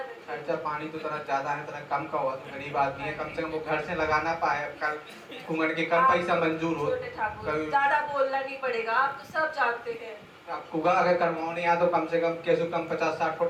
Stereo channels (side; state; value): both; identical; correlation 1.00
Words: खर्चा पानी तो तरह ज्यादा है, तरह कम का हुआ तो गरीब आदमी है, कम से कम वो घर से लगाना पाए। कल कुंगड़ के कम पैसा मंजूर हो। छोटे ठाकुर कभी ज्यादा बोलना नहीं पड़ेगा, आप तो सब जानते हैं। अब कुगा अगर करवानी है तो कम से कम कैसे कम 50-60